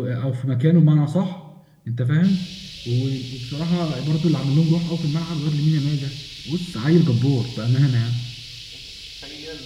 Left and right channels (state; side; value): identical; both; correlation 1.00